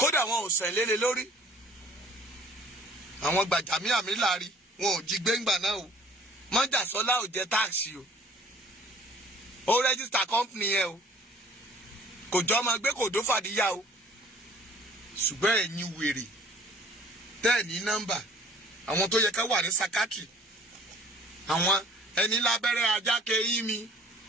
wọn ò sẹ̀ lélẹ̀ lórí àwọn Gbàjàmíàmí láàrí wọn ò jí gbẹ́ngbà náà o Mọ́jàsọ́lá ò jẹ táàsì o ó rẹ́gísítà company yẹn o kò jọ ọmọ gbé kò dó fàdíyà o ṣùgbọ́n ẹ̀yin wèrè tẹ́ẹ̀ ní nọ́mbà àwọn tó yẹ ká wà ní sakatri àwọn ẹni lábẹ́rẹ́ ajáke yín mi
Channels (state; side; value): normal; both; correlation 0.52